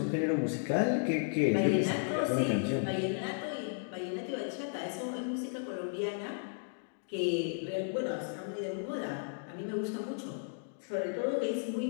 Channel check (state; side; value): silent; right; digital silence